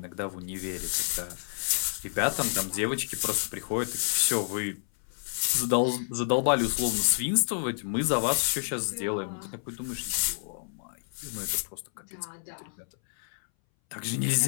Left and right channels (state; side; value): silent; right; 58 dB below the other